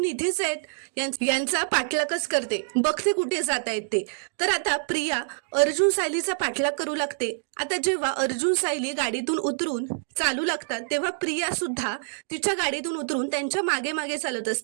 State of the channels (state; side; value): silent; left; digital silence